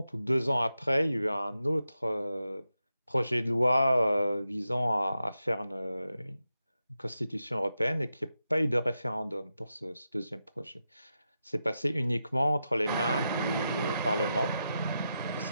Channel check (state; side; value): inverted; both; correlation -0.88